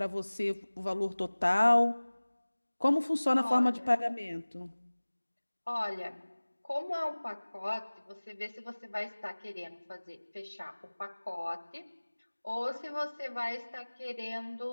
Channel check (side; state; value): both; inverted; correlation -1.00